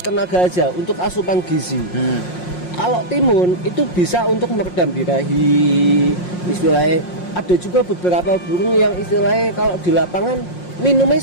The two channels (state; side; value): late; right; 5.6 ms